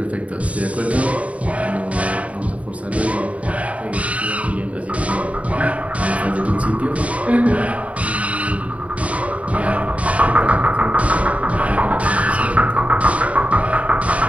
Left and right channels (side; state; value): left; late; 0.067 ms